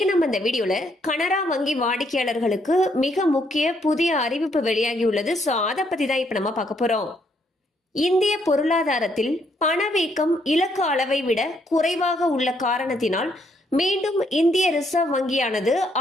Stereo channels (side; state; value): both; normal; correlation 0.72